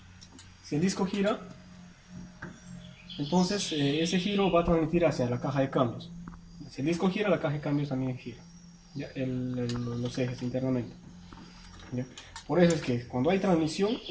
entonces ese giro va a transmitir hacia la caja de cambios. Si el disco gira, la caja de cambios también gira. ¿Ya? Los ejes internamente. ¿Ya? Por eso es que cuando hay transmisión,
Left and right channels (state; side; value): identical; both; correlation 1.00